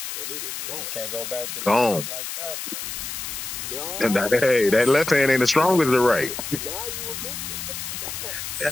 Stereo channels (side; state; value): left; noise; hiss, 6 dB below the sound